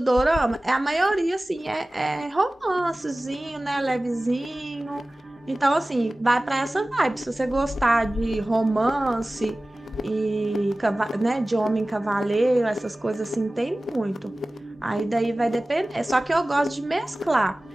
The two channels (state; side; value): normal; both; correlation 0.97